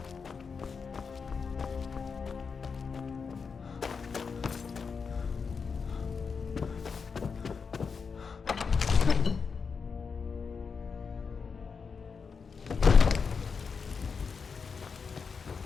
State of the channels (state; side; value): quieter; right; 5.5 dB